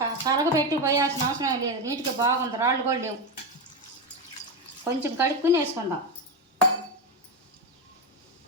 కరగబెట్టి పోయాల్సిన అవసరం లేదు. నీట్గా బాగుంది, రాళ్ళు కూడా లేవు. కొంచెం కడుక్కుని వేసుకుందాం.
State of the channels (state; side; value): normal; both; correlation 0.13